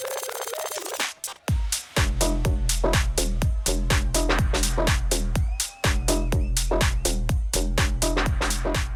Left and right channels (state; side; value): identical; both; correlation 1.00